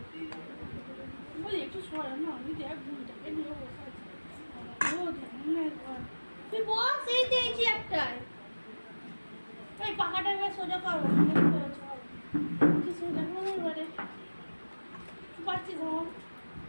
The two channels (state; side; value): inverted; both; correlation -1.00